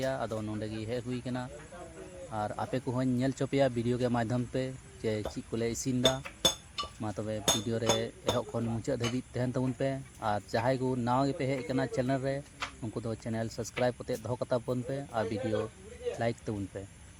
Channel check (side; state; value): both; identical; correlation 1.00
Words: आदो नोडे गी हे हुई कना और आपे को हों नेल चोपिया वीडियो के माध्यम पे जे ची कोले इसिन दा मा तबे वीडियो रे एहो खन मुचा धबी तहन तबुन पे और जहाय को नावा गे पे हे कना चैनल रे उनको दो चैनल सब्सक्राइब कते दो कता बन पे और वीडियो लाइक तबुन पे